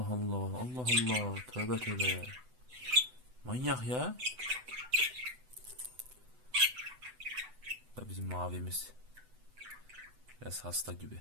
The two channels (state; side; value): late; left; 8.0 ms